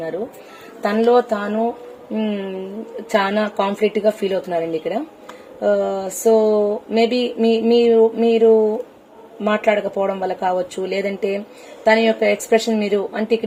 తనలో తాను చాలా కాన్ఫ్లిక్ట్ గా ఫీల్ అవుతున్నారండి ఇక్కడ. సో మేబీ మీరు మాట్లాడకపోవడం వల్ల కావచ్చు, లేదంటే తన యొక్క ఎక్స్ప్రెషన్ మీరు అంటే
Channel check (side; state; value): both; identical; correlation 1.00